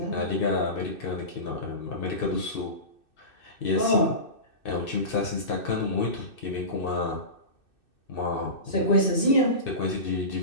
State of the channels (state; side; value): late; right; 2.6 ms